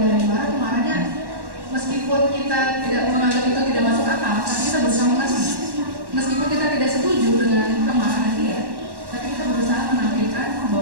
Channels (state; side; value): late; left; 1.1 ms